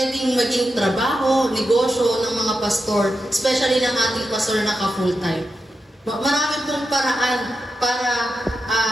maging trabaho, negosyo ng mga pastor, especially ng ating pastor na ka-full-time. Marami pong paraan para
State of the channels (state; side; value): normal; both; correlation 0.88